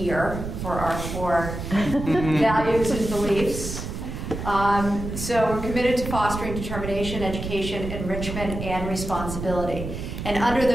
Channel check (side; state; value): right; noise; rumble, 7 dB below the sound